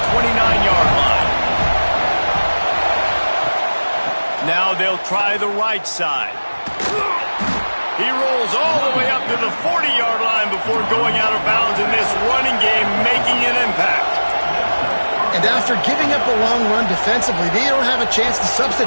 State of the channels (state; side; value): inverted; both; correlation -1.00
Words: 29-yard line. Now they'll try the right side. He rolls all the way up to the 40-yard line before going out of bounds in this running game, making an impact. And after giving up a long run defensively, they don't have a chance to